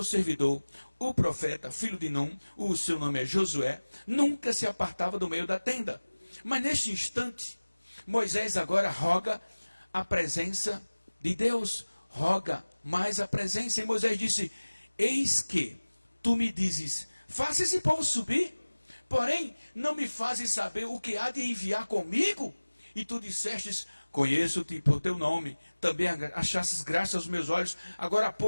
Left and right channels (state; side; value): inverted; both; correlation -1.00